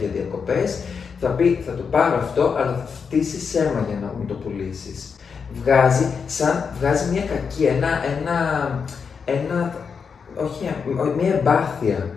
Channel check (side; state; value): right; quieter; 6.0 dB